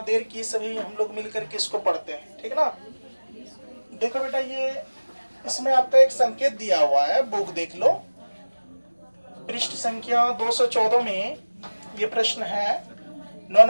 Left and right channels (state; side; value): inverted; both; correlation -1.00